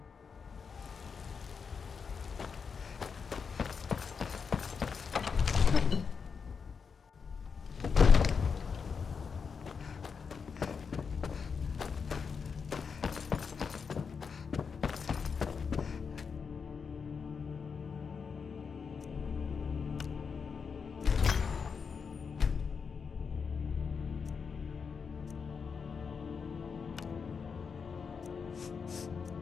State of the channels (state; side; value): quieter; right; 5.8 dB